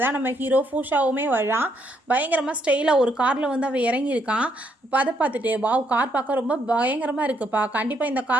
தான் நம்ம ஹீரோ ஃபூஷாவுமே வரான். பயங்கரமாக ஸ்டைலாக ஒரு காரில் அவள் இறங்கியிருக்கான். இப்போ அதை பார்த்துட்டு வாவ் கார் பார்க்க ரொம்ப பயங்கரமாக இருக்குப்பா, கண்டிப்பாக இந்த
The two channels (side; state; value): both; normal; correlation 0.73